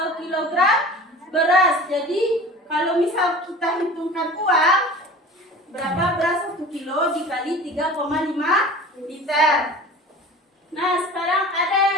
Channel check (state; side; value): normal; both; correlation 0.39